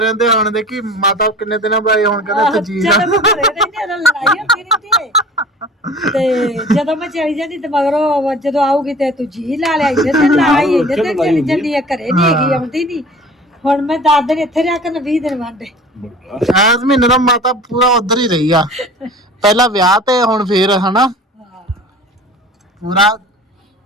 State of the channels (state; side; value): normal; both; correlation 0.43